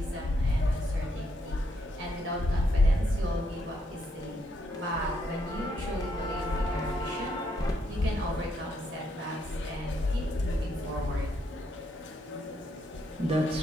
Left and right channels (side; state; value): both; normal; correlation 0.76